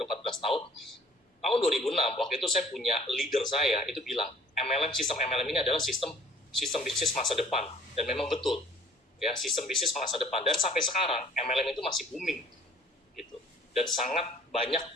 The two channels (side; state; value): both; normal; correlation 0.54